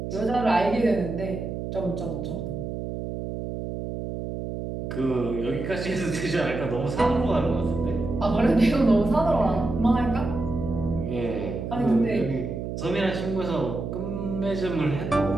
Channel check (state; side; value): noise; right; hum, 5 dB below the sound